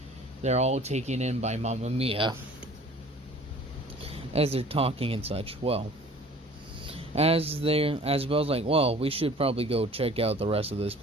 they're all taken in by Mamma Mia. As they're talking and such. Well, as Bel's like, well, we should probably go check out the rest of this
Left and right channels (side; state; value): both; normal; correlation 0.48